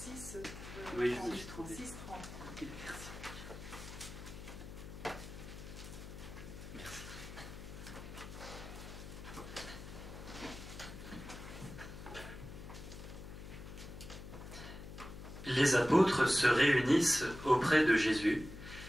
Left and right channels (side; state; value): left; noise; hum, 12 dB below the sound